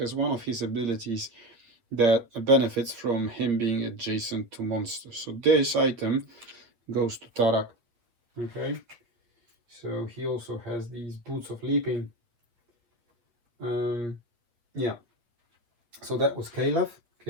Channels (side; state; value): left; late; 8.6 ms